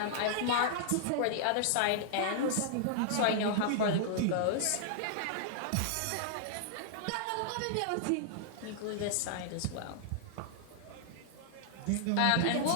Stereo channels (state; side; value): different; both; correlation -0.01